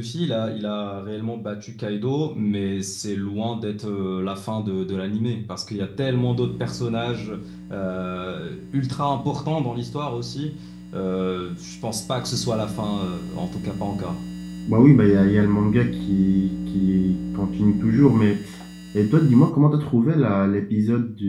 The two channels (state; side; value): identical; both; correlation 1.00